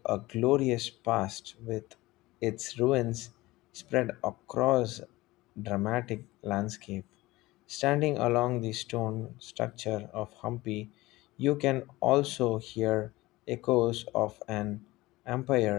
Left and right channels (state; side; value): quieter; right; 19.3 dB